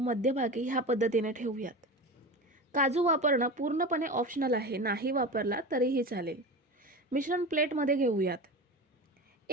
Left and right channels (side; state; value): both; normal; correlation 0.28